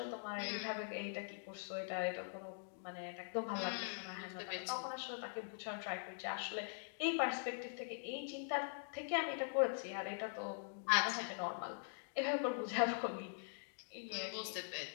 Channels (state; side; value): silent; right; digital silence